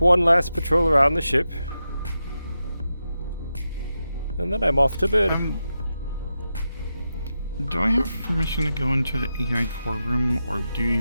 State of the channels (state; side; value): inverted; both; correlation -0.89